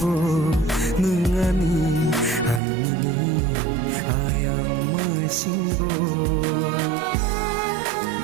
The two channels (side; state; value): left; drops out; at 2.6 s